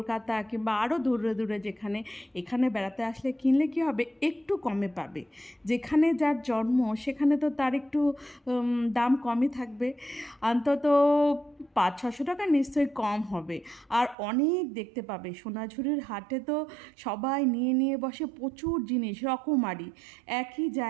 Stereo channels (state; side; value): drops out; left; at 14.2 s